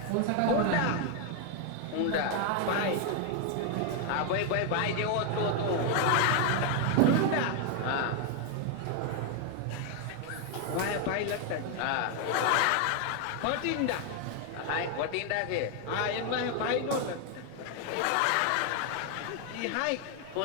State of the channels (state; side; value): different; both; correlation 0.00